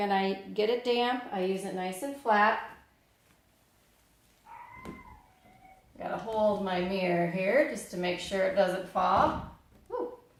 I get it damp, I use it nice and flat. Got to hold my mirror here just to make sure it doesn't fall.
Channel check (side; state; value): both; identical; correlation 1.00